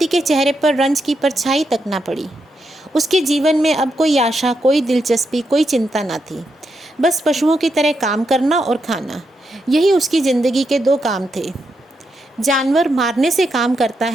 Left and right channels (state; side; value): normal; both; correlation 0.83